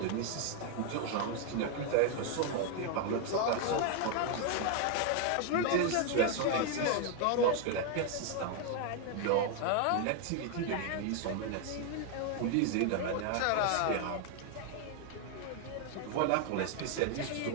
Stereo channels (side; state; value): both; different; correlation 0.00